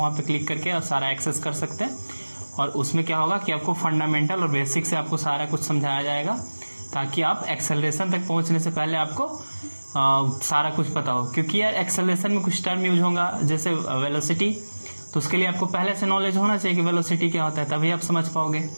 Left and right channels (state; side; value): inverted; both; correlation -1.00